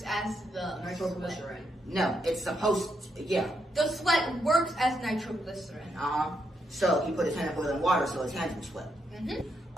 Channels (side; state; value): both; normal; correlation 0.79